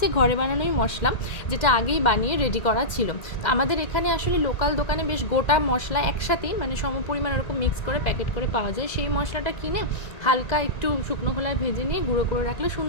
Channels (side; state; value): right; late; 1.9 ms